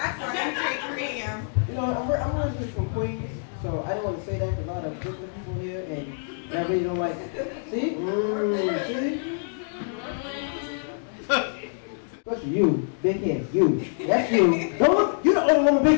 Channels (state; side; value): silent; right; digital silence